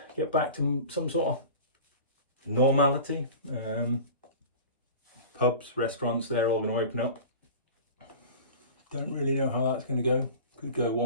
to some sort of normality. Pubs, restaurants, they're all going to open up. Don't really know how that's going to go. Could go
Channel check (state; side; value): inverted; both; correlation -0.36